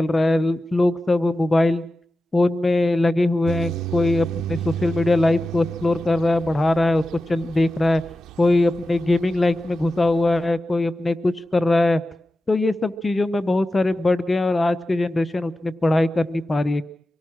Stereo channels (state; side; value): normal; both; correlation 0.93